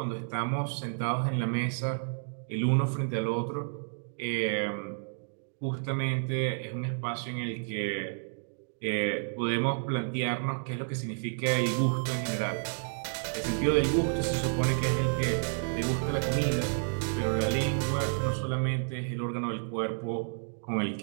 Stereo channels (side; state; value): left; silent; digital silence